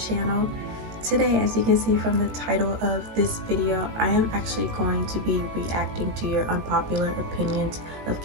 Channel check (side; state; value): left; late; 18 ms